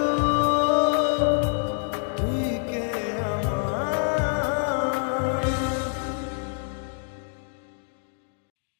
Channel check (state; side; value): silent; right; digital silence